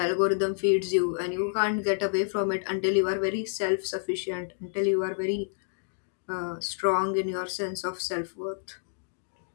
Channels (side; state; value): right; silent; digital silence